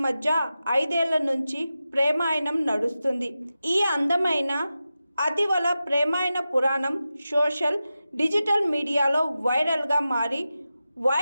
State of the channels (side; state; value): both; inverted; correlation -0.92